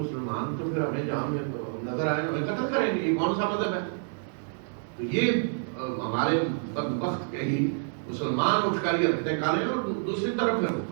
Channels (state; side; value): silent; left; digital silence